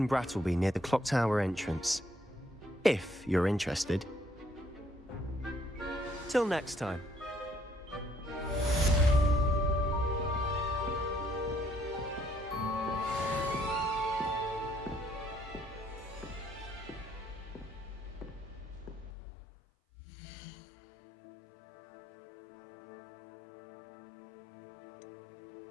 Brattleby near the clock tower entrance, if you're interested. Till next time.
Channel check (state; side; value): drops out; right; at 19.1 s